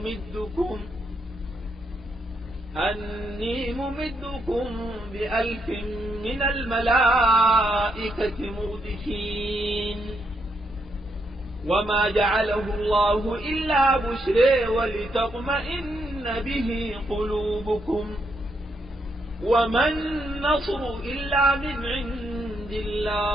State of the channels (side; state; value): both; normal; correlation 0.78